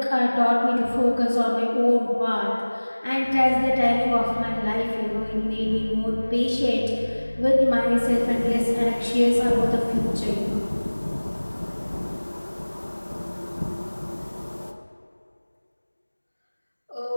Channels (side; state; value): both; inverted; correlation -1.00